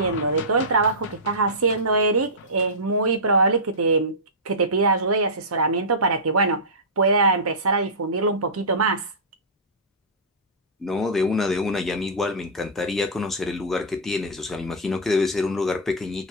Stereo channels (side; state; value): both; normal; correlation -0.17